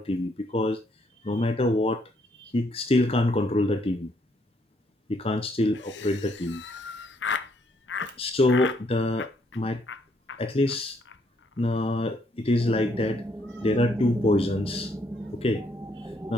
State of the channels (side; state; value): both; normal; correlation 0.71